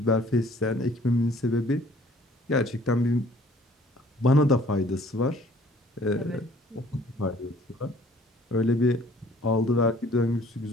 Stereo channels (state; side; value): normal; both; correlation 0.56